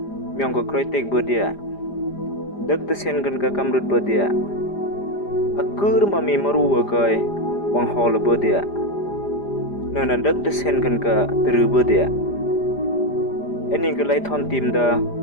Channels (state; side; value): late; right; 5.0 ms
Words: ko kroi tek bodia dak te sen gan ka kamrut bodia akur ma mi maru wa kai wang hol bodia nana dak te sen gan ka teru bodia eni ga lai thon tim da